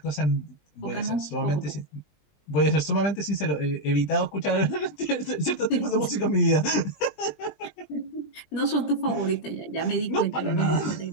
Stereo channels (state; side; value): late; right; 20 ms